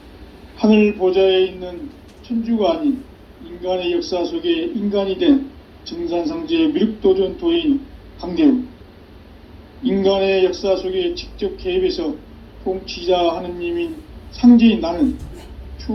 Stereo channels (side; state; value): both; identical; correlation 1.00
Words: 하늘 보좌에 있는 천주가 아닌 인간의 역사 속에 인간이 된 증산상제의 미륵도전 도인 강대우. 인간의 역사 속에 직접 개입해서 통치자 하느님인 상제인 나는